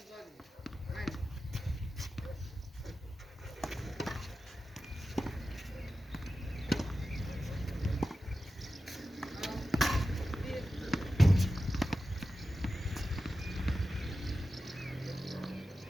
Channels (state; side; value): normal; both; correlation 0.93